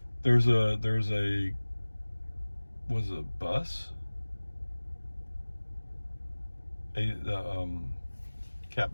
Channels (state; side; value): inverted; both; correlation -1.00